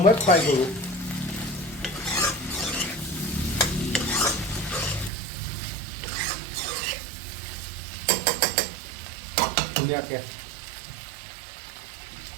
ফ্ৰাই কৰোঁ ধুনীয়াকৈ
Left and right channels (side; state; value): left; drops out; at 5.1 s